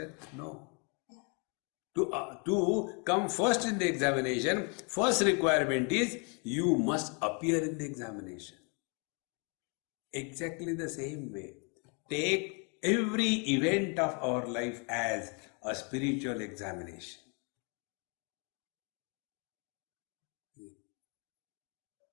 No. To come first in the examination, first requirement is you must appear in the examination. Exactly the same way. Take every event of our life as a spiritual examination.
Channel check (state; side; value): quieter; right; 35.8 dB